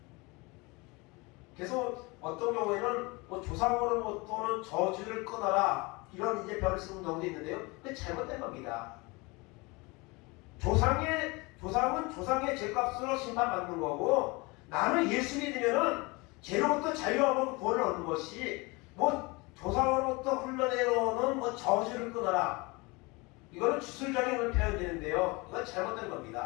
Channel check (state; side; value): quieter; right; 25.8 dB